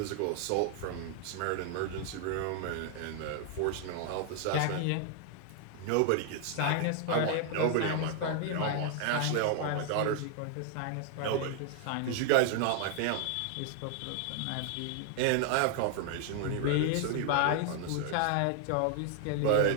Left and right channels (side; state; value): both; different; correlation 0.00